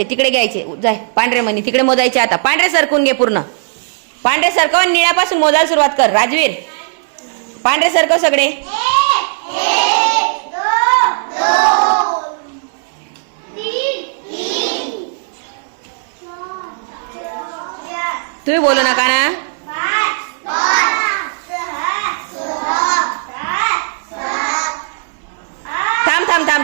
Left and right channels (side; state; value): left; silent; 62 dB below the other